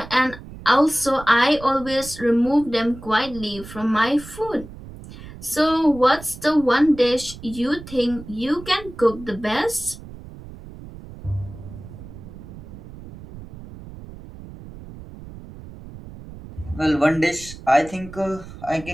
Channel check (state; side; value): noise; right; rumble, 15 dB below the sound